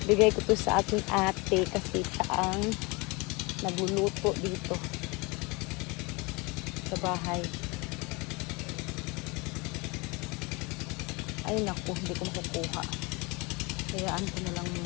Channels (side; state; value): right; quieter; 27.0 dB